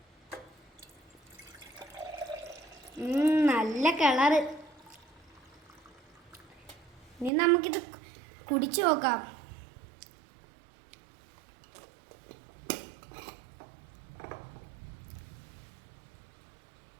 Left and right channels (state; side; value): drops out; left; at 7.3 s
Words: നല്ല കളറ്. ഇനി നമുക്കിത് കുടിച്ചു നോക്കാം.